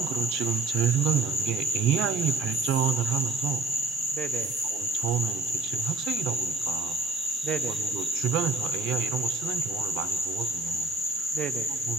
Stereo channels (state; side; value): quieter; left; 3.4 dB